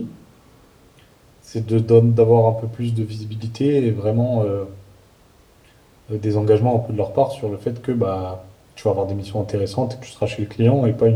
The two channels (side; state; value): both; identical; correlation 1.00